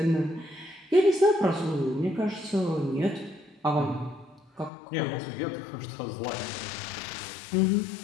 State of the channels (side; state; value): right; drops out; at 4.7 s